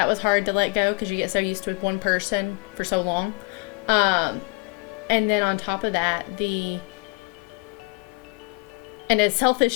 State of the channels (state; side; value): quieter; right; 31.6 dB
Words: was hard to let go because you get so used to one person for so long. And then on top of that, and as